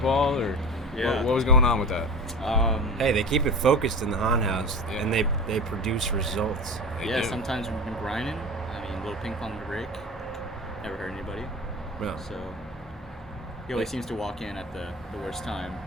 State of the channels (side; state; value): both; normal; correlation 0.31